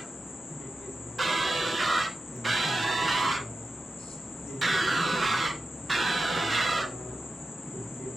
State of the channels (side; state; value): both; normal; correlation 0.92